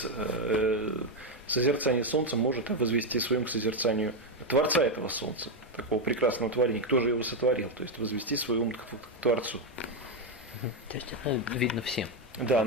созерцания солнца может возвести своим к созерцанию Творца этого солнца, такого прекрасного творения, кто же его сотворил, то есть возвести свой ум к Творцу. То есть это видно всем. Да,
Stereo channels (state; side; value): normal; both; correlation 0.06